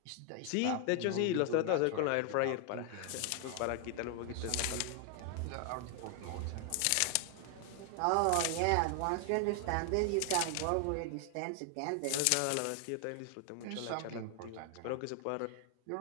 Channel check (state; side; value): different; both; correlation 0.00